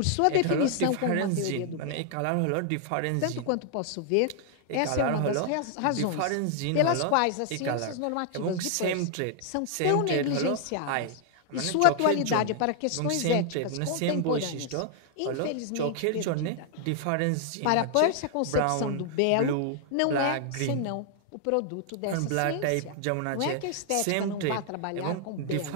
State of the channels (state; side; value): different; both; correlation 0.00